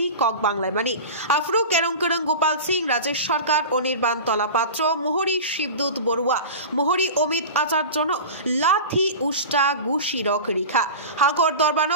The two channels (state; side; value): inverted; both; correlation -0.31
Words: কক বাংলায় মানি আফরু কেরং করং গোপাল সিং রাজেশ সরকার অনির্বাণ তলাপাত্র মোহরি শিবদূত বড়ুয়া মোহরি অমিত আচার্য লাথি উষ্টা গুশি রক রেখা হাঙ্কর